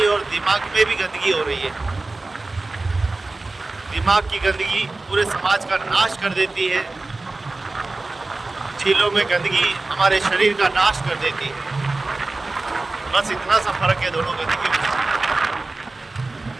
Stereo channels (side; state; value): left; quieter; 3.3 dB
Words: है और दिमाग में भी गंदगी हो रही है। दिमाग की गंदगी पूरे समाज का नाश कर देती है, झीलों में गंदगी हमारे शरीर का नाश कर देती है। बस इतना सा फर्क है दोनों गंदगी में।